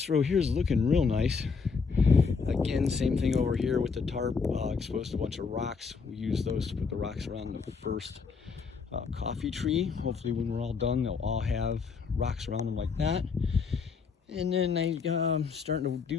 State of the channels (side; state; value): right; quieter; 5.3 dB